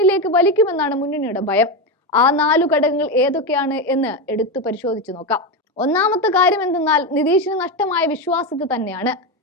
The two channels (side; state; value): both; normal; correlation 0.13